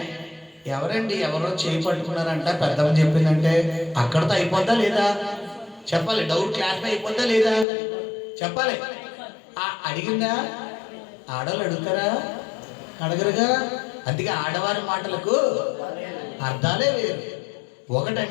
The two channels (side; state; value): right; drops out; at 7.7 s